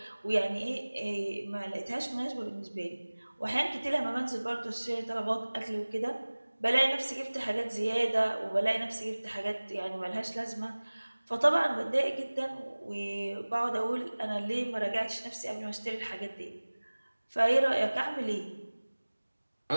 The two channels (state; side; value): inverted; both; correlation -1.00